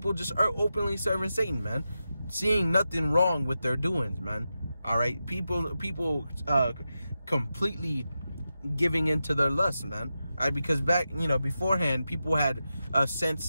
just are openly serving Satan, man, seeing nothing wrong with their doings, man. All right, people completely giving into their lust, man. All right, because back, beforehand, people had a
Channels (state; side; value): inverted; both; correlation -0.90